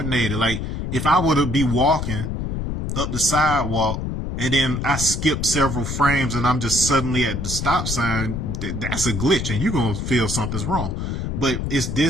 Like if I were to be walking up the sidewalk, and then I skip several frames and I'm just suddenly at the stop sign, that's a glitch and you're going to feel something's wrong. But it's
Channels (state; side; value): noise; left; rumble, 3 dB below the sound